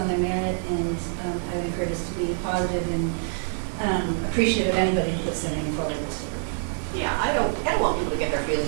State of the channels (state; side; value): silent; left; 61 dB below the other